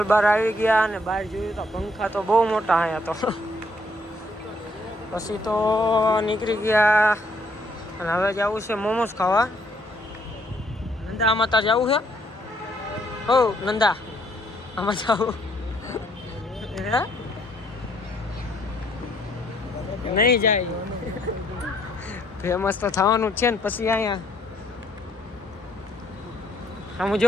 બહાર આવી ગયા અને બહાર જોયું તો પંખા તો બહુ મોટા અહીંયા તો. પછી તો નીકળી ગયા અને હવે જવું છે મોમોસ ખાવા. નંદા આમાં તાર જવું છે? હો નંદા આમાં જવું નહીં જાય. ફેમસ તો થવાનું જ છે ને. પછી અહીંયા આમ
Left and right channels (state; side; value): normal; both; correlation 0.68